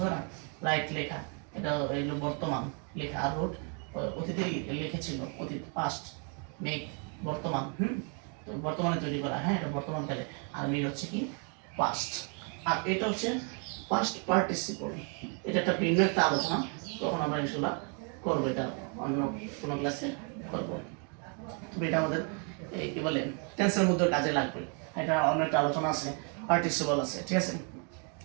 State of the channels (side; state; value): left; quieter; 38.6 dB